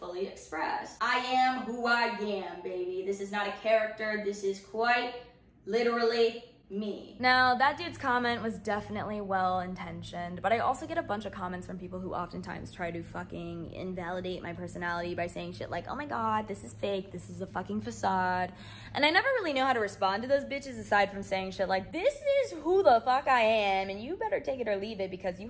express? I am who I am, baby. This is not a character. This is quite literally me. Now, that dude's comment was definitely well-intentioned, but I also get a bunch of comments from people who oftentimes try to fucking invalidate my personality by saying shit like, oh my god, this is fake, this is a fucking facade. And I never really know how to respond to those bitches aside from saying shit like, this is who the fuck I am, and you better take it or leave it because you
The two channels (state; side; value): identical; both; correlation 1.00